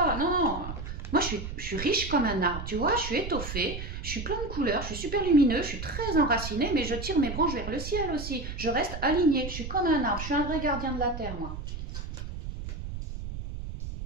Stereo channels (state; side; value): noise; right; rumble, 7 dB below the sound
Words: Non. Moi, je suis riche comme un arbre, tu vois, je suis étoffée, je suis plein de couleurs, je suis super lumineux, je suis très enracinée, mais je tire mes branches vers le ciel aussi. Je reste alignée, je suis comme un arbre, je suis un vrai gardien de la terre, moi.